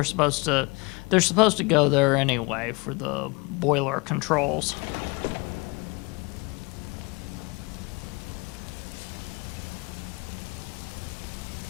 supposed to go there anyway for the boiler controls.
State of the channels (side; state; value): right; quieter; 27.4 dB